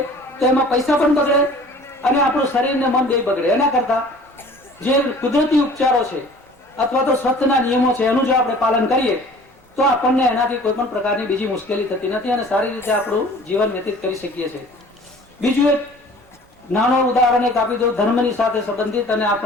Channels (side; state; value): both; normal; correlation 0.48